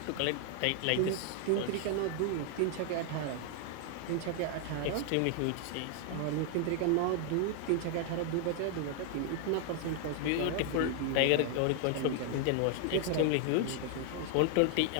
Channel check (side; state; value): both; different; correlation 0.00